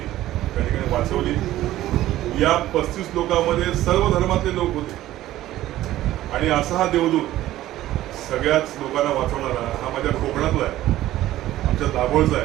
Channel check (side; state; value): left; quieter; 14.6 dB